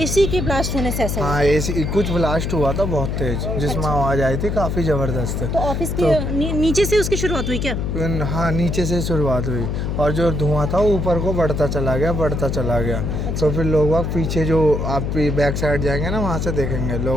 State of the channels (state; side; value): noise; left; hum, 1 dB below the sound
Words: एसी के ब्लास्ट होने से ऐसा हुआ। हाँ, एसी कुछ ब्लास्ट हुआ था बहुत तेज, जिसमें आवाज़ आई थी काफ़ी ज़बरदस्त। तो ऑफिस के नीचे से उसकी शुरुआत हुई क्या? हाँ, नीचे से शुरुआत हुई और जो धुआं था वो ऊपर को बढ़ता चला गया। तो फिर लोग बाग पीछे, जो आप बैक साइड जाएंगे ना, वहाँ से देखेंगे